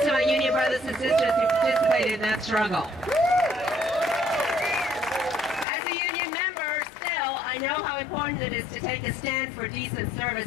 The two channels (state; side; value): drops out; right; at 5.7 s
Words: my union brothers and sisters who participated in that struggle. As a union member, still, I know how important it is to take a stand for decent